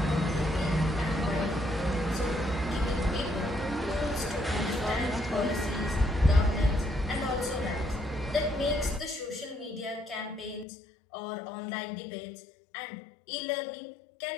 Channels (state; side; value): drops out; right; at 10.7 s